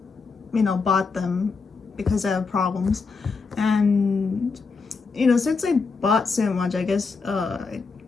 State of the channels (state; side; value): quieter; right; 4.6 dB